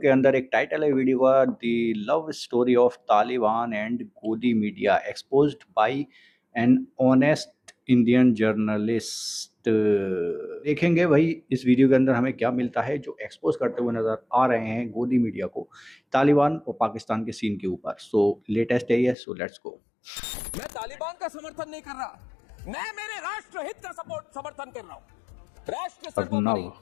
अंदर एक टाइटल है वीडियो का, the love story of Taliban and godi media exposed by an honest Indian journalist. देखेंगे भाई इस वीडियो के अंदर हमें क्या मिलता है जो एक्सपोज करते हुए नजर आ रहे हैं गोदी मीडिया को तालिबान और पाकिस्तान के सीन के ऊपर। सो लेटेस्ट है ये, सो लेट्स गो। मैं तालिबान का समर्थन नहीं कर रहा, मैं मेरे राष्ट्र हित का समर्थन कर रहा हूँ। राष्ट्र सर्वोपरि,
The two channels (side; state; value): right; drops out; at 19.2 s